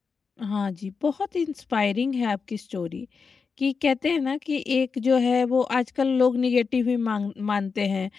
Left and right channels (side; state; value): right; quieter; 5.2 dB